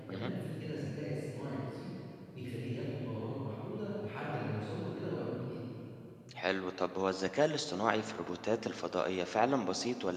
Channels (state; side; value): identical; both; correlation 1.00